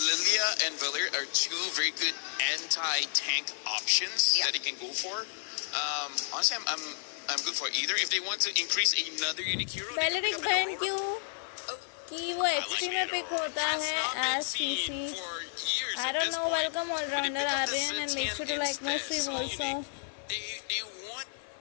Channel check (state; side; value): silent; right; 57 dB below the other